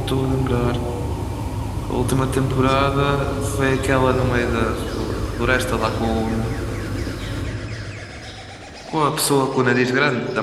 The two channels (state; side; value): identical; both; correlation 1.00